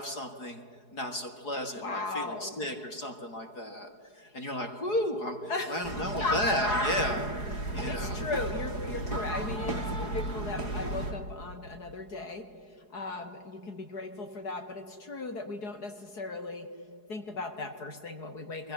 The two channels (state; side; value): late; right; 4.8 ms